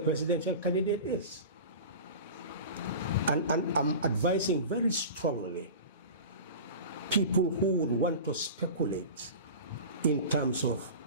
candidate is. And I'm advising very strongly people who would want to speculate in terms of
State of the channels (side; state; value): both; inverted; correlation -0.34